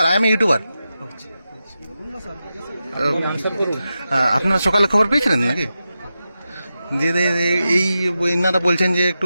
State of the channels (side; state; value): both; inverted; correlation -0.91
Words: I am a YouTuber. আপনারা সকালে খবর পেয়েছিলেন নাকি? যে এই ইনারা বলছেন যে